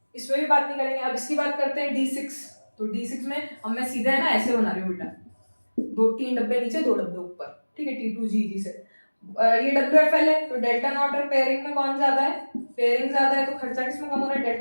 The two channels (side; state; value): both; inverted; correlation -1.00